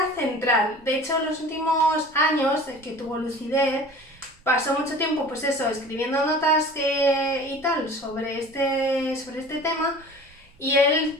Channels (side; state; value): both; normal; correlation 0.42